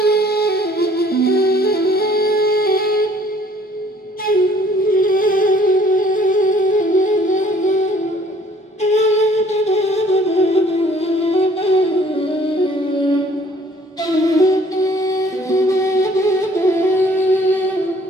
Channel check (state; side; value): normal; both; correlation 0.57